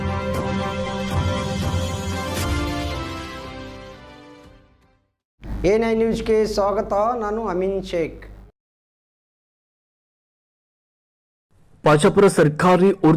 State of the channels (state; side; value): identical; both; correlation 1.00